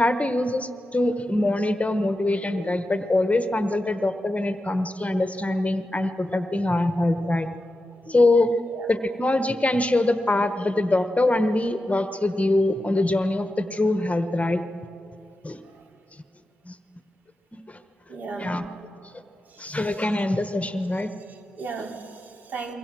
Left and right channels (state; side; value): normal; both; correlation 0.90